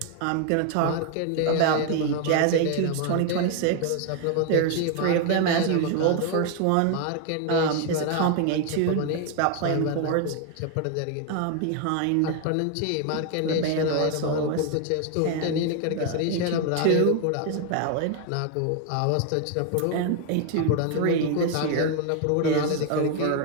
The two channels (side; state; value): both; different; correlation 0.01